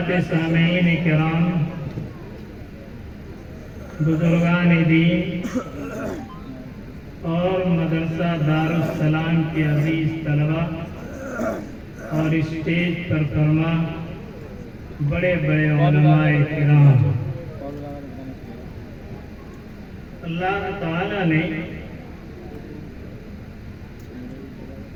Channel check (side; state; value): both; identical; correlation 1.00